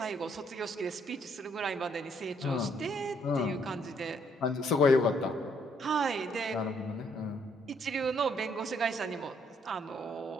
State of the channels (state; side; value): normal; both; correlation 0.69